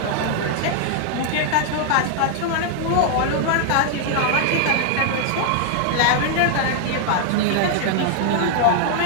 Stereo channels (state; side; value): different; both; correlation 0.00